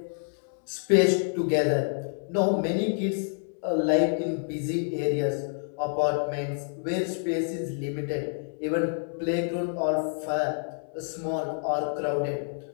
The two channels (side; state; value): right; silent; digital silence